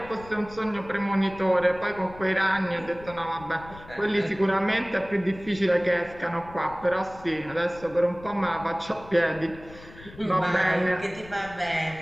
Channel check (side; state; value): left; noise; rumble, 18 dB below the sound